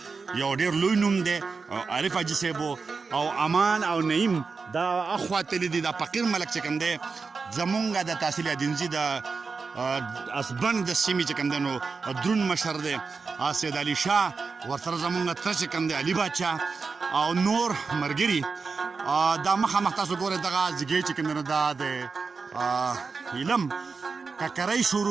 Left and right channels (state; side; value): quieter; left; 4.7 dB